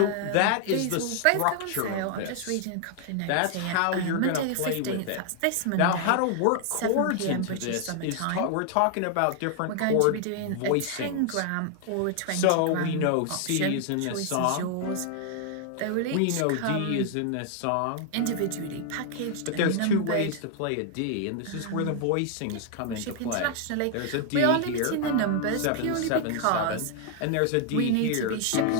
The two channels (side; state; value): both; different; correlation 0.00